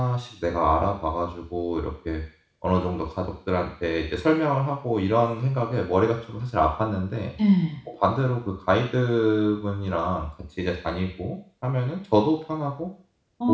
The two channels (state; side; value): identical; both; correlation 1.00